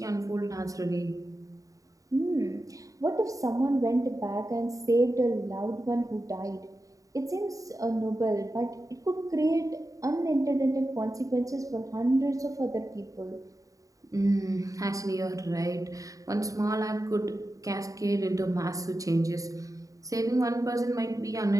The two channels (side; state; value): left; late; 0.16 ms